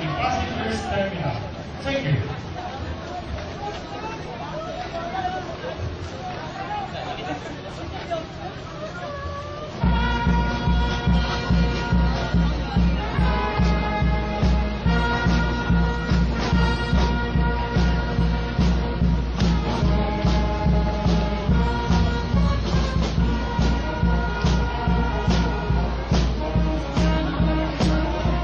Passengers Terminal. Thank you.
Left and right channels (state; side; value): identical; both; correlation 1.00